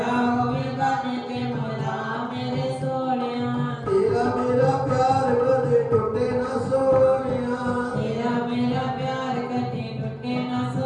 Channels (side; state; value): both; identical; correlation 1.00